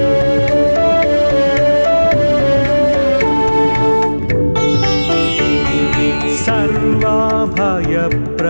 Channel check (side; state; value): both; inverted; correlation -1.00